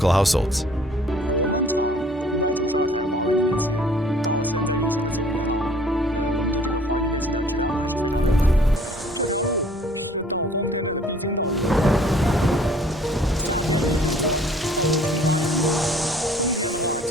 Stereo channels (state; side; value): normal; both; correlation 0.56